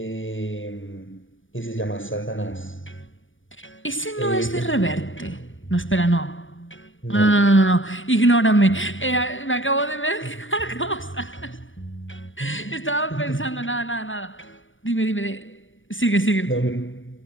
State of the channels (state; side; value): late; right; 0.57 ms